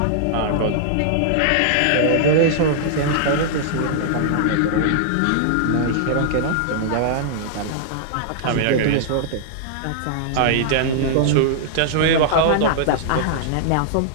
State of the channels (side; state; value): both; different; correlation -0.01